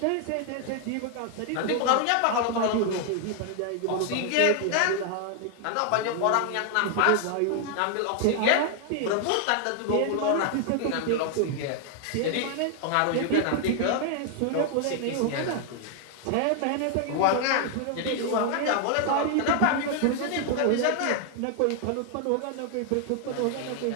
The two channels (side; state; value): both; different; correlation 0.00